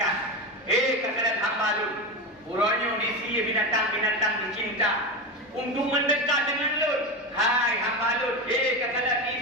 kalian hamba Lut, uronyo disi binatang-binatang dicinta untuk mendekat dengan Lut. Hai hamba Lut, kalian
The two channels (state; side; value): normal; both; correlation 0.19